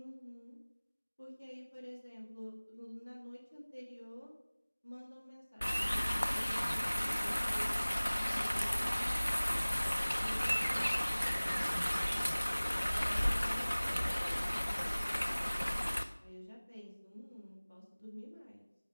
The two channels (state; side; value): inverted; both; correlation -1.00